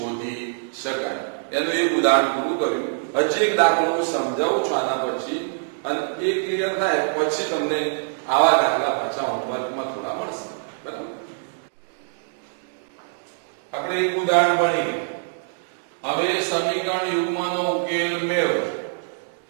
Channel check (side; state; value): left; silent; digital silence